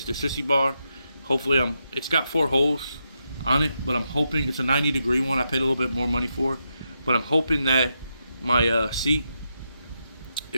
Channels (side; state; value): both; inverted; correlation -0.84